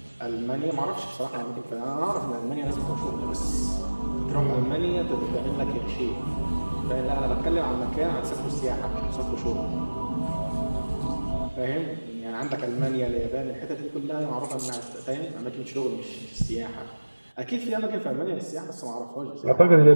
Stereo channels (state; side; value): inverted; both; correlation -1.00